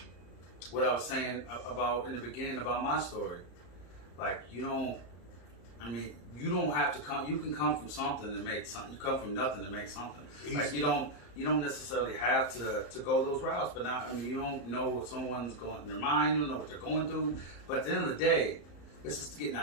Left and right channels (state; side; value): late; right; 34 ms